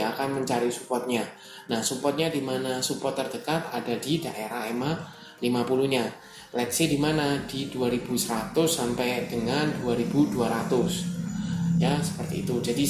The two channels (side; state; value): both; identical; correlation 1.00